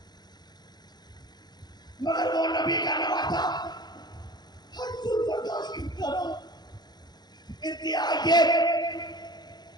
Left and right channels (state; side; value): late; right; 0.20 ms